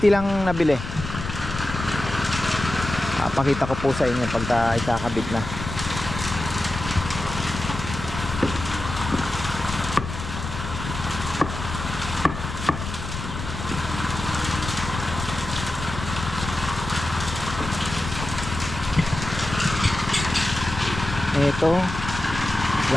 lang nabili. Pakita ko po sa inyo pagka ikakabit na. Ito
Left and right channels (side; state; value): left; noise; rumble, 8 dB below the sound